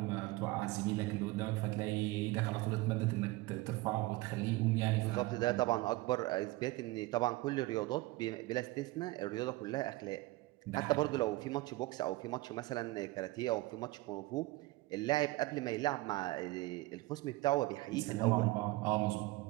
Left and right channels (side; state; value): left; quieter; 20.3 dB